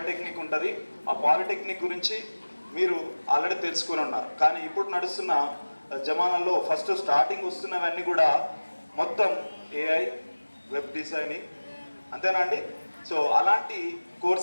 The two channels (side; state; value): both; inverted; correlation -1.00